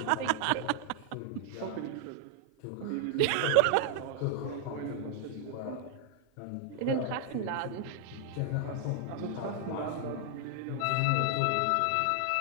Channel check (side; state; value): both; different; correlation -0.01